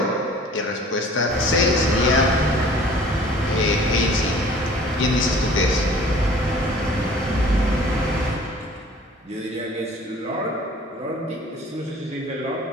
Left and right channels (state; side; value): normal; both; correlation 0.49